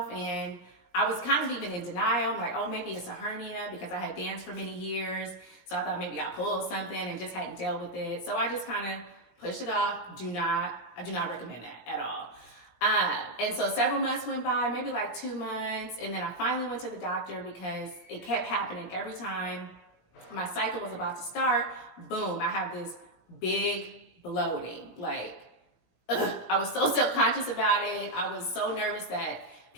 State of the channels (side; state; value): right; late; 17 ms